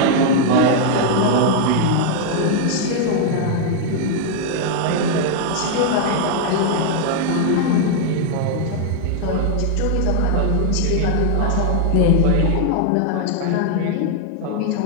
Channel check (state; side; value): different; both; correlation 0.00